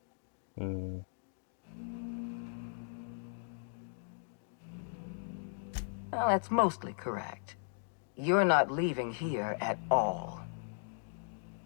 Well, that's mostly correct. You're not leaving here at all.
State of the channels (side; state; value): right; silent; digital silence